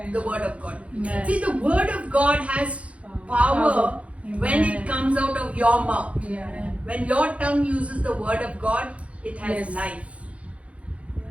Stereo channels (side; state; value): left; late; 0.063 ms